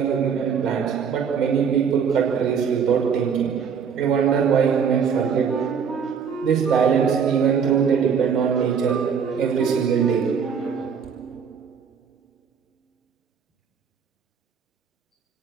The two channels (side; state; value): left; quieter; 6.8 dB